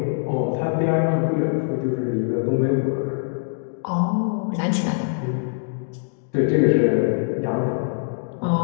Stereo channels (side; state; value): right; silent; digital silence